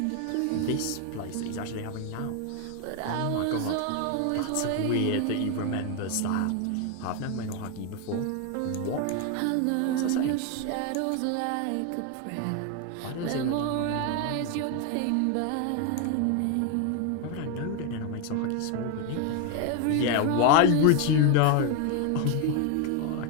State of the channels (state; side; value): different; both; correlation 0.01